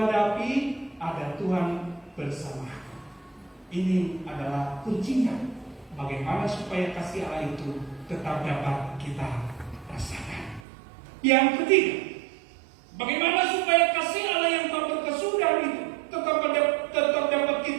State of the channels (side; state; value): left; drops out; at 10.7 s